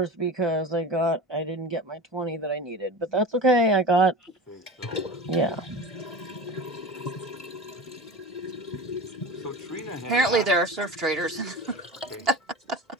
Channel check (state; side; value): normal; both; correlation 0.31